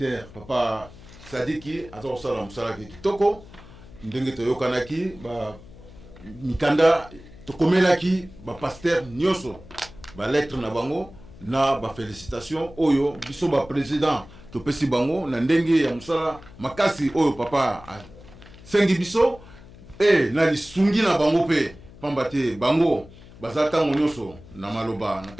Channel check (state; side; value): noise; left; hum, 20 dB below the sound